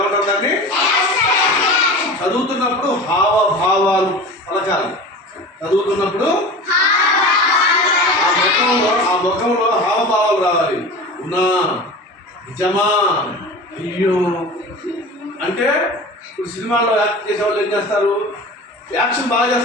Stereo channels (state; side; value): normal; both; correlation 0.35